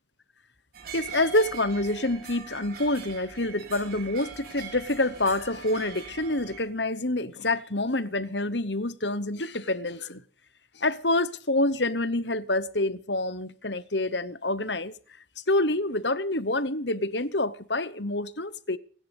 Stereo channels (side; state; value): both; normal; correlation -0.04